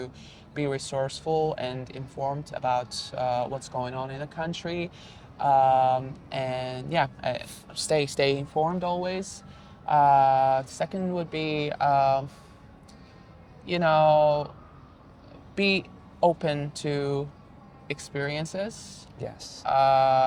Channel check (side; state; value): both; identical; correlation 1.00